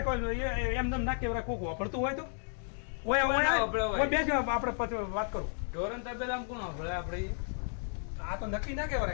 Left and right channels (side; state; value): right; silent; 56 dB below the other